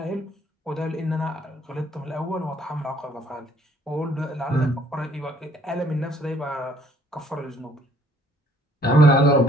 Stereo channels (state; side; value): normal; both; correlation 0.62